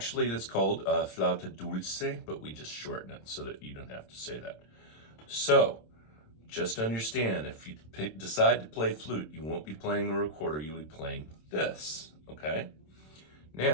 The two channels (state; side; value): late; right; 26 ms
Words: that's called flauta dulce, but we just shorten it so that you don't have to say that. So, just understand, if you decide to play flute, you won't be playing a recorder, you'll be playing this, okay?